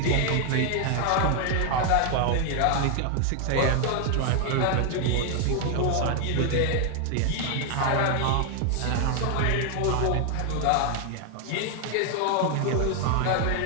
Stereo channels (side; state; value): both; different; correlation 0.00